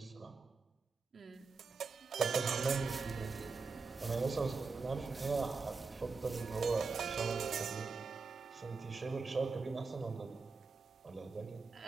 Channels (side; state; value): left; quieter; 4.5 dB